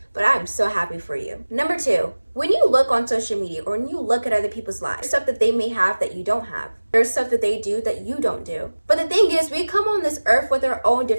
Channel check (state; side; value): inverted; both; correlation -1.00